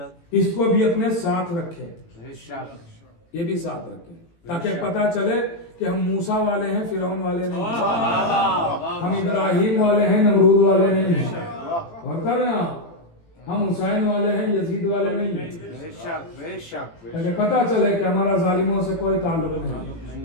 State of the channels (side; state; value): right; late; 18 ms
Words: इसको भी अपने साथ रखें, ये भी साथ रखें, ताकि पता चले कि हम मूसा वाले हैं, फिरौन वाले नहीं, हम इब्राहिम वाले हैं, नमरूद वाले नहीं, और कर रहे हैं हम हुसैन वाले हैं, यजीद वाले नहीं। ताकि पता चले कि हमारा जालिमों से कोई ताल्लुक नहीं,